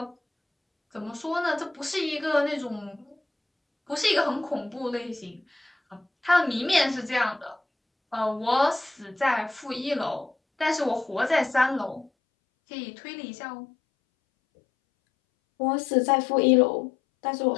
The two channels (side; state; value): right; drops out; at 12.1 s